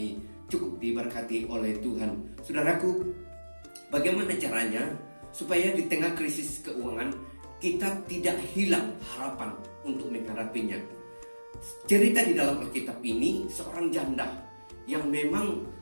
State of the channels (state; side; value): inverted; both; correlation -1.00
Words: cukup diberkati oleh Tuhan. Saudaraku, bagaimana caranya supaya di tengah krisis keuangan kita tidak hilang harapan untuk menghadapinya? Cerita di dalam Alkitab ini seorang janda yang memang